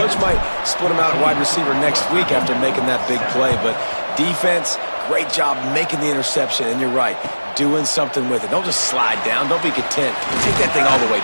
might split him out at wide receiver next week after making that big play. But defense, great job making the interception. And you're right, doing something with it. Don't just slide down. Don't be content. Take that thing all the way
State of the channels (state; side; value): inverted; both; correlation -1.00